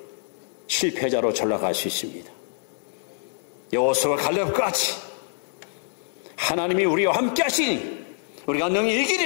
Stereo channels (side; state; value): right; silent; digital silence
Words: 실패자로 전락할 수 있습니다. 여호수아와 갈렙같이 하나님이 우리와 함께 하시니 우리가 능히